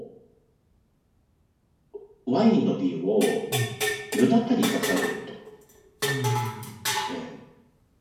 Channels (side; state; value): both; identical; correlation 1.00